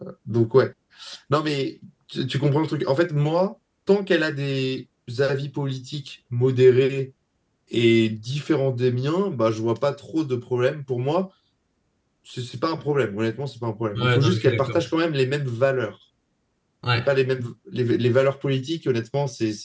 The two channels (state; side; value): identical; both; correlation 1.00